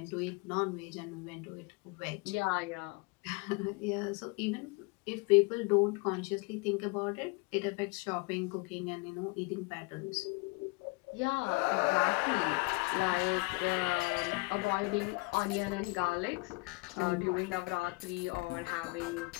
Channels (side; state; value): right; quieter; 28.0 dB